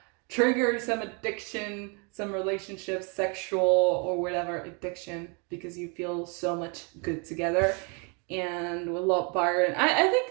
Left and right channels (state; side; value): quieter; left; 34.0 dB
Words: trigger some addiction, some relationship, sexual or whatever addiction, because you feel so much good together. And with Lord Byron, I